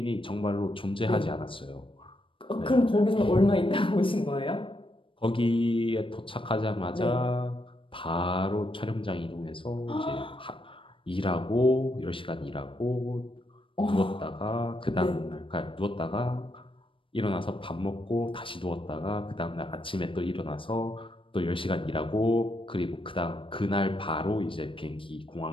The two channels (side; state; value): right; late; 0.25 ms